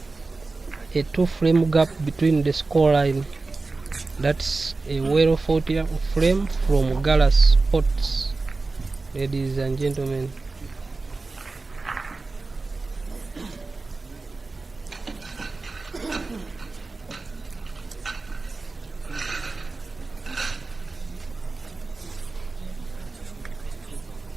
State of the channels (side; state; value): left; quieter; 3.7 dB